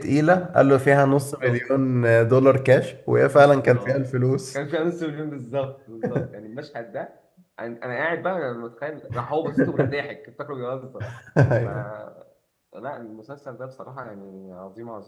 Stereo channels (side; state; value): both; identical; correlation 1.00